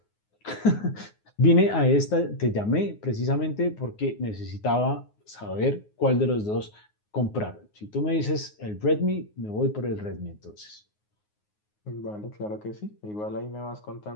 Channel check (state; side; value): late; right; 9.5 ms